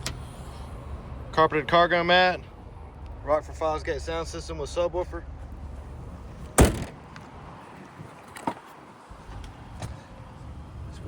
carpeted cargo mat, Rockford Fosgate sound system with subwoofer. It's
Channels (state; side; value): identical; both; correlation 1.00